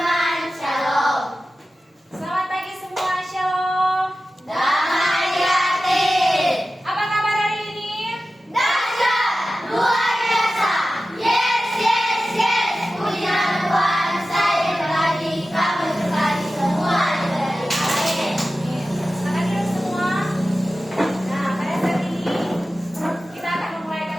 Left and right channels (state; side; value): normal; both; correlation 0.94